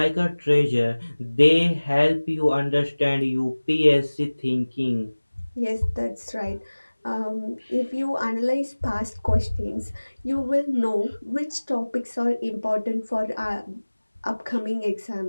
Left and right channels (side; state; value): both; inverted; correlation -1.00